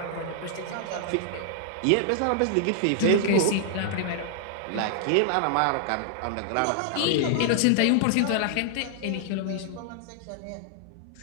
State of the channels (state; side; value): different; both; correlation -0.01